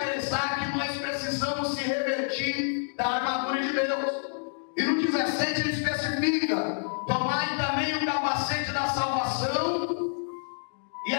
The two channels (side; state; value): right; silent; digital silence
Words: que nós precisamos se revestir da armadura de Deus. E no 17 ele especifica: tomai também o capacete da salvação e